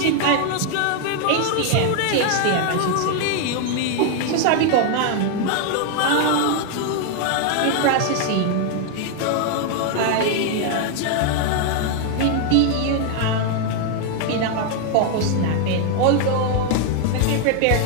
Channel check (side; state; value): both; different; correlation 0.00